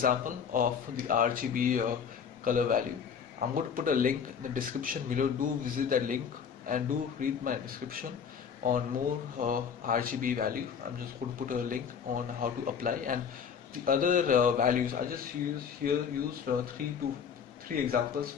of the RGB color value. I'm going to put a link in the description below. Do visit that link and do read my description on more RGB value. I'm just going to put a link on how to apply, and the other values I just used three examples,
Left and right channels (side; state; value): right; quieter; 7.0 dB